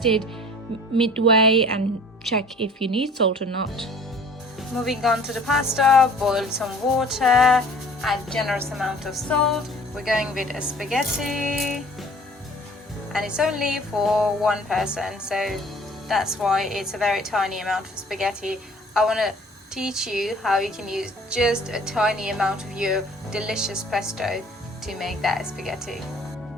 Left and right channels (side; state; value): both; normal; correlation 0.50